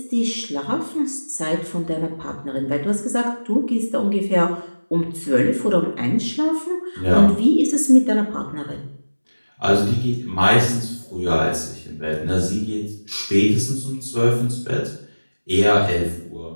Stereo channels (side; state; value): both; inverted; correlation -1.00